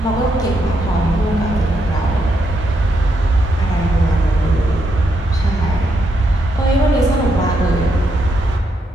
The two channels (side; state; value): both; normal; correlation 0.79